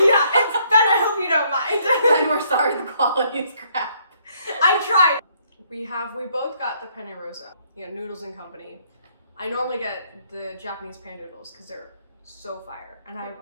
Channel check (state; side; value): inverted; both; correlation -0.68